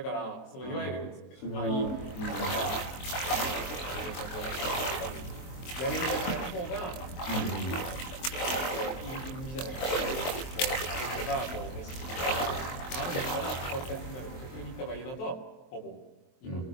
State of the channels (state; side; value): late; right; 23 ms